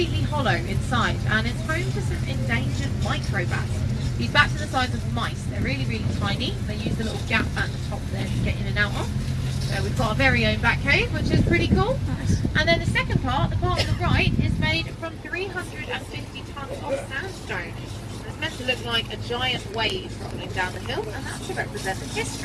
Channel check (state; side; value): identical; both; correlation 1.00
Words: hollow inside, and it's home to some endangered microbats. These bats are the size of mice. They're really, really tiny. They use the little gap at the top there to get in and out of. So we've got our very own bat cave, which is pretty cool. Nice. And then the second part, the part on the right, is made from 350 tonnes of sandstone. It's meant to look like a giant wave rolling down the hill, and that's to represent the